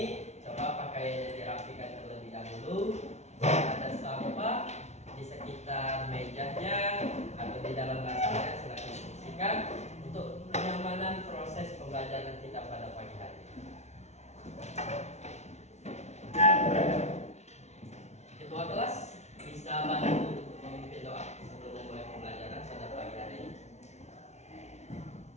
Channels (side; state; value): right; late; 0.32 ms